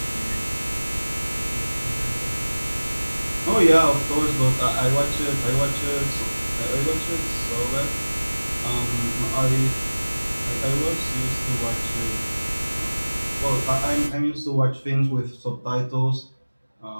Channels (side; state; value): both; inverted; correlation -1.00